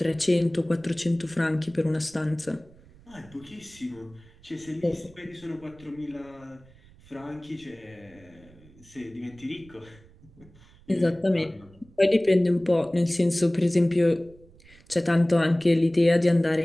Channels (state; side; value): noise; right; rumble, 25 dB below the sound